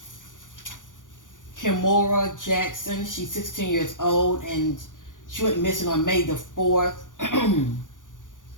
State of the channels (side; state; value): right; late; 0.88 ms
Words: Kimora Jackson. She's 16 years old and she went missing on May the 4th.